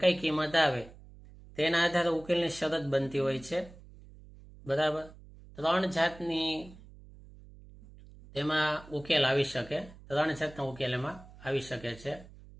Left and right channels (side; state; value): right; noise; hum, 20 dB below the sound